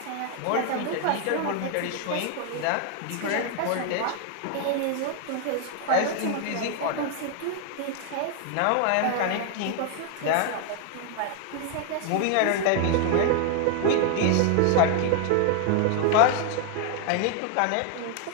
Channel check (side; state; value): both; different; correlation 0.00